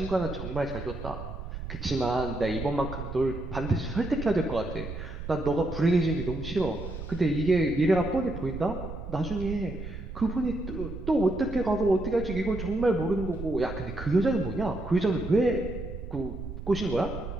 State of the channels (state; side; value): noise; right; rumble, 9 dB below the sound